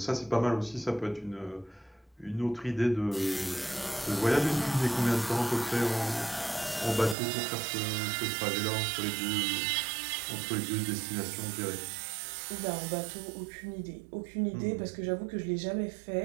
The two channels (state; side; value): drops out; left; at 7.2 s